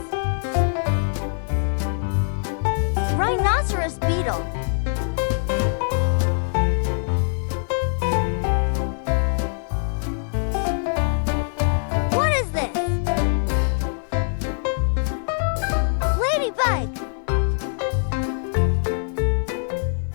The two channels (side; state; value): right; silent; 63 dB below the other